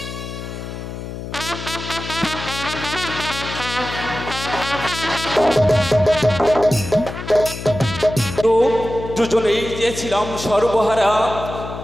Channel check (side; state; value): left; noise; hum, 9 dB below the sound